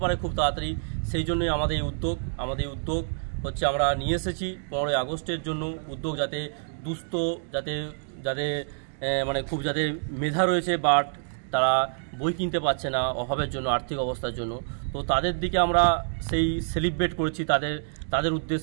পারে খুব তাড়াতাড়ি, সেই জন্যই আমাদের এই উদ্যোগ হচ্ছে আমরা নিয়ে এসেছি 15ই আগস্টের জন্য উদ্যোগ, যাতে দুস্থ, যাতে মানে খুব যাতে মেধা রয়েছে বাট তারা বই কিনতে পারছে না অভাবের জন্য, আর্থিক অবস্থার জন্য। তো তাদের দিকে আমরা সেই সেলিব্রেট করেছি, তাদের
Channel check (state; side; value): silent; left; digital silence